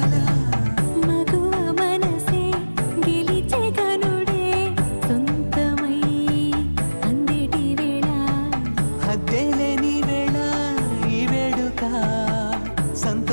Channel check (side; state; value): both; inverted; correlation -1.00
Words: మగువ మనసే గెలిచే కనుడే సొంతమై అందేటి వేళ, హద్దేలేని వేళ ఈ వేడుక,